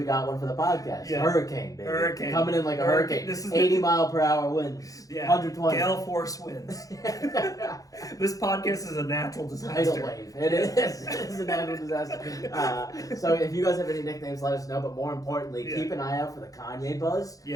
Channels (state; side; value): late; right; 0.17 ms